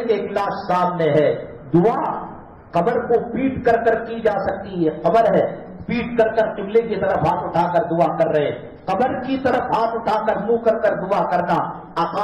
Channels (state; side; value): identical; both; correlation 1.00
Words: کہ ایک لاش سامنے ہے۔ دعا قبر کو پیٹ کر کر کی جا سکتی ہے، قبر ہے، پیٹ کر کر قبلے کی طرف ہاتھ اٹھا کر دعا کر رہے، قبر کی طرف ہاتھ اٹھا کر منہ کر کر دعا کرنا